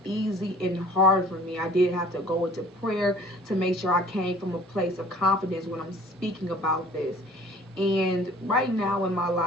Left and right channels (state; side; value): normal; both; correlation 0.50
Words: easy and hard for me. I did have to go into prayer to make sure I came from a place of confidence when I'm speaking about this. And right now in my